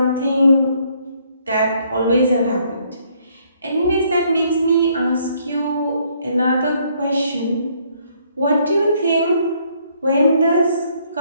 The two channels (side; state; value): both; inverted; correlation -0.67